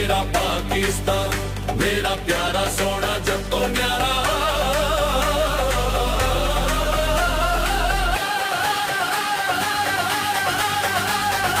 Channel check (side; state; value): both; identical; correlation 1.00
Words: पाकिस्तान मेरा प्यारा सोना जब तो न्यारा।